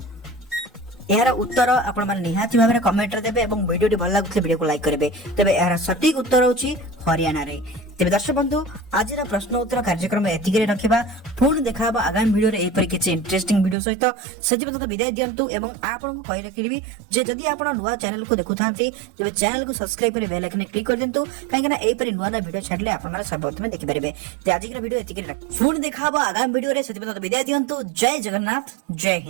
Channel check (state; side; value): drops out; left; at 13.8 s